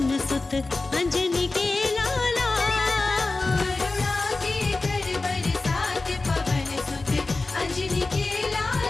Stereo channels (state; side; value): quieter; right; 3.4 dB